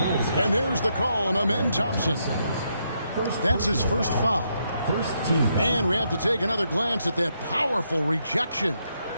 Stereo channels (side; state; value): both; inverted; correlation -0.78